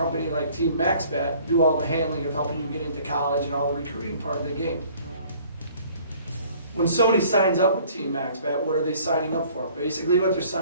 like Team Maxbat do all the handling of helping you get into college and all the recruiting part of the game. When somebody signs up with Team Maxbat, what are they signing up for? Basically what they're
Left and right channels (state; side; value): inverted; both; correlation -0.55